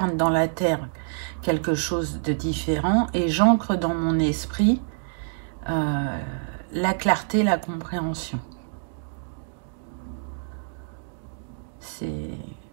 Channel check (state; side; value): silent; left; digital silence